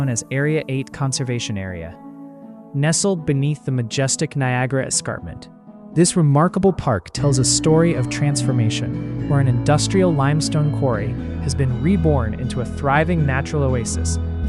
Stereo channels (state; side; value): identical; both; correlation 1.00